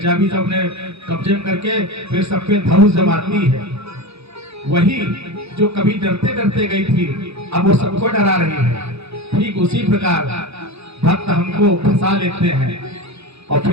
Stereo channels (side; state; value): left; late; 0.79 ms